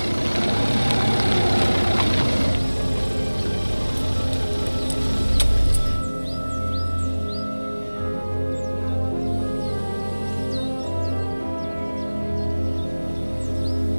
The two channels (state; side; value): inverted; both; correlation -1.00